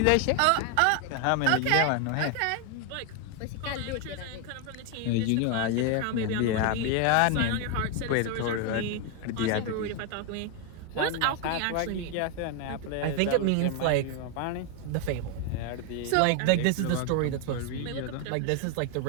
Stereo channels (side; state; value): both; different; correlation 0.01